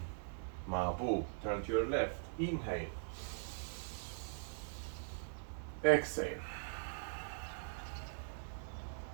Mabu, turn to your left, inhale. Exhale.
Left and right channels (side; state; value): left; silent; digital silence